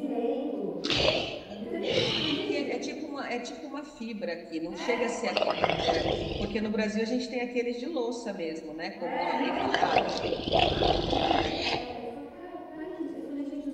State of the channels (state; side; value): identical; both; correlation 1.00